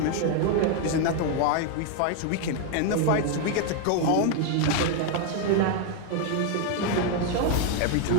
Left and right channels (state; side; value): different; both; correlation 0.00